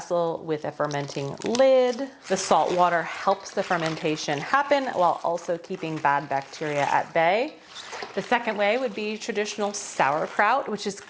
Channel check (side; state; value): both; identical; correlation 1.00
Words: with a fermenting lid. The salt water helps the fermentation happen while also keeping bad bacteria at bay. The second way would be traditional sauerkraut, which is